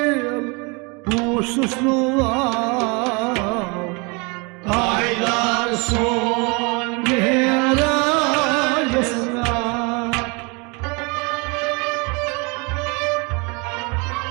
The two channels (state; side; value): quieter; left; 30.1 dB